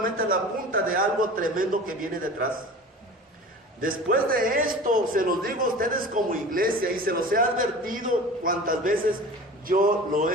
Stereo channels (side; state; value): both; normal; correlation 0.38